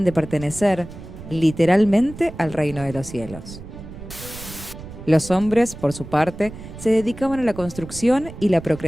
de pertenecer, literalmente, al reino de los cielos. Los hombres, por su parte, se dedicaban a la construcción y la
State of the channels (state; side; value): noise; right; rumble, 14 dB below the sound